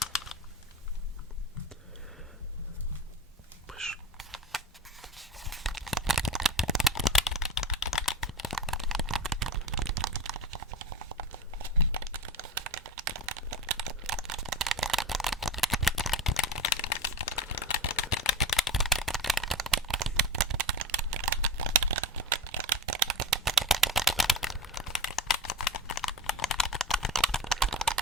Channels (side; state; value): both; normal; correlation 0.27